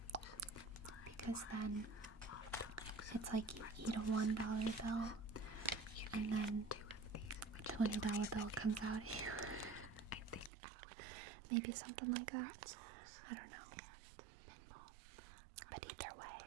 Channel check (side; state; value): left; drops out; at 10.5 s